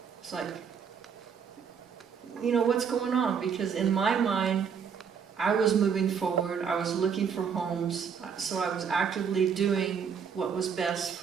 It's like, you know, what's going on? Because in my mind, I was moving forward. I was looking for homes. So I was actively doing what was best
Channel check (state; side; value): quieter; left; 6.8 dB